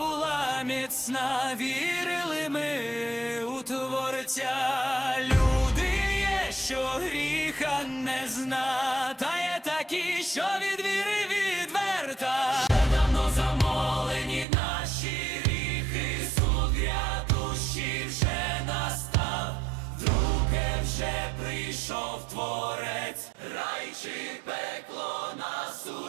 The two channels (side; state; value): left; drops out; at 14.5 s